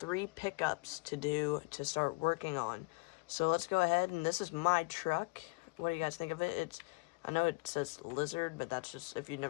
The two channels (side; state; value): right; quieter; 28.4 dB